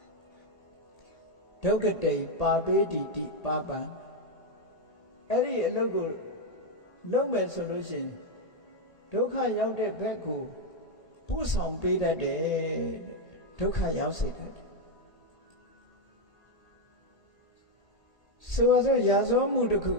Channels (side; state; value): right; late; 1.8 ms